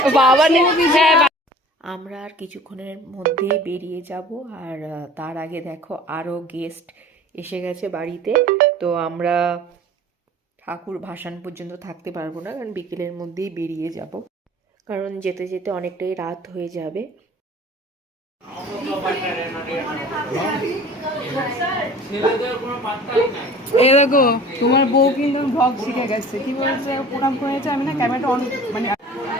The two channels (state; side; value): normal; both; correlation 0.45